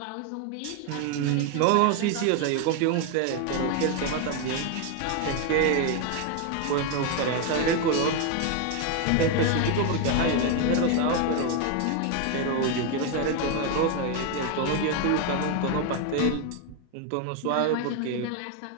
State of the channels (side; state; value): both; different; correlation 0.01